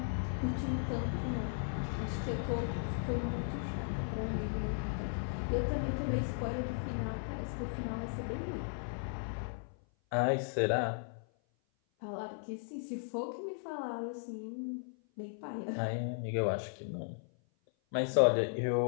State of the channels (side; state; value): right; silent; 54 dB below the other